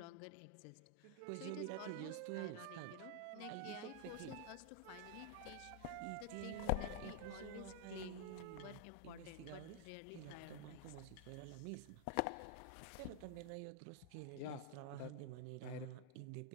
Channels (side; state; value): both; different; correlation 0.00